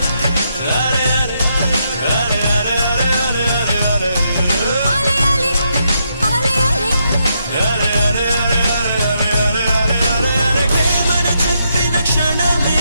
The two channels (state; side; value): inverted; both; correlation -0.79